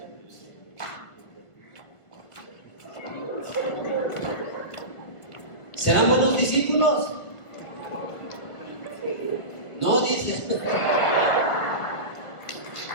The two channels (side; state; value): right; late; 1.5 ms